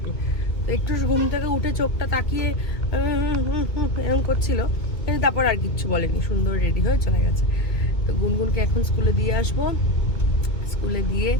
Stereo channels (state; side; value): late; right; 2.1 ms